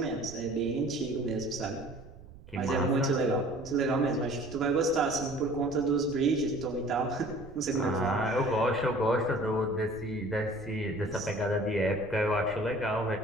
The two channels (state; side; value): noise; right; rumble, 19 dB below the sound